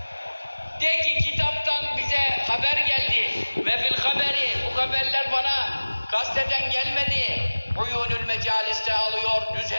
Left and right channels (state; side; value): inverted; both; correlation -1.00